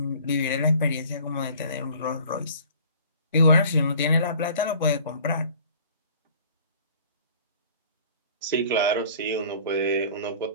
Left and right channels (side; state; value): both; inverted; correlation -0.49